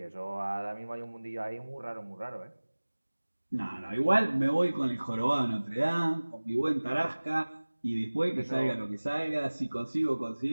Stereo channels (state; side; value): inverted; both; correlation -1.00